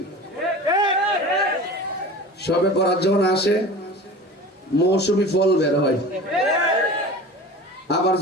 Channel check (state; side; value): normal; both; correlation 0.36